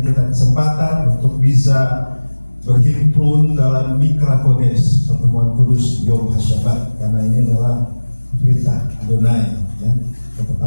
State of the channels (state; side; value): inverted; both; correlation -1.00